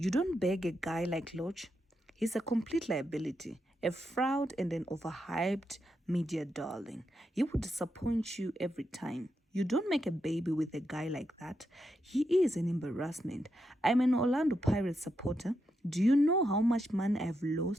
don't beg a guy like Lorch. He's a complete liability, a fraud and an overhyped media darling. He will disappoint you every time. You don't make a baby with a guy like that. He is an embarrassment. I'm an Orlando Pirates supporter. Do you know how much money I've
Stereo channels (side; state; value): both; normal; correlation 0.84